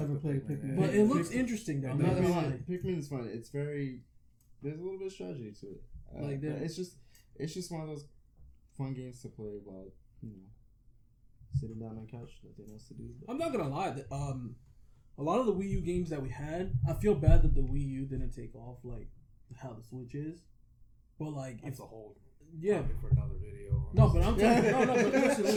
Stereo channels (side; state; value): both; identical; correlation 1.00